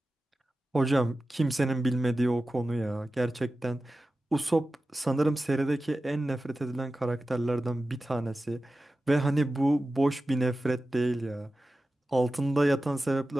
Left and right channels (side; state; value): both; normal; correlation 0.94